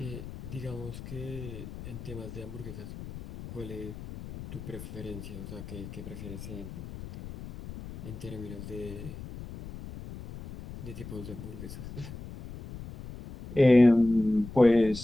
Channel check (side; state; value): left; noise; rumble, 12 dB below the sound